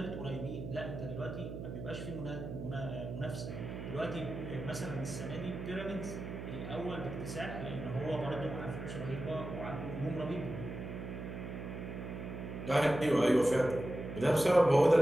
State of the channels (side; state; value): right; noise; hum, 7 dB below the sound